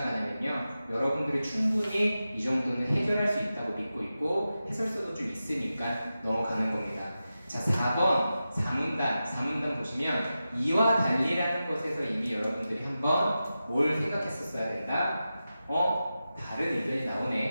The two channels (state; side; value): inverted; both; correlation -0.92